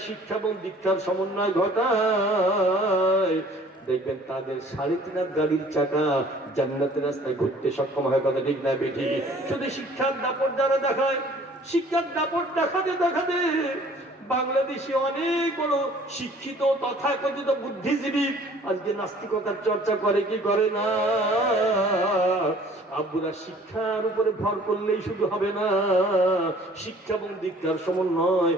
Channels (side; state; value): both; normal; correlation 0.53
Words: শিক্ষা এবং দীক্ষার সমন্বয় ঘটায়, দেখবেন তাদের 3.5 গাড়ির চাকা জান্নাতের রাস্তায় ঘুরতে সক্ষম হয়। কথা ঠিক না বেঠি? শুধু শিক্ষার দাপট যারা দেখায়, শিক্ষার দাপট দেখাতে দেখাতে বাংলাদেশে অনেক বড় শিক্ষিত তথাকথিত বুদ্ধিজীবী আজকে নাস্তিকতার চর্চা করে কি করে না? আব্বুরা, শিক্ষার উপরে ভর করলেই শুধু হবে না, শিক্ষা এবং দীক্ষার সমন্বয়